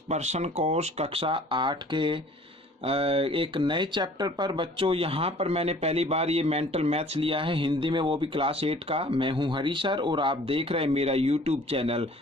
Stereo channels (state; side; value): normal; both; correlation 0.51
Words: पर्सन कोर्स कक्षा 8 के एक नए चैप्टर पर। बच्चों यहाँ पर मैंने पहली बार ये मेंटल मैथ्स लिया है हिंदी में, वो भी क्लास 8 का। मैं हूँ हरी सर और आप देख रहे हैं मेरा YouTube channel